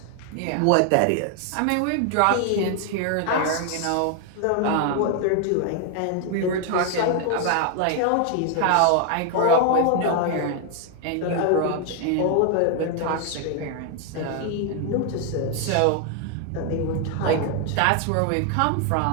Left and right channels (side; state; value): both; different; correlation 0.00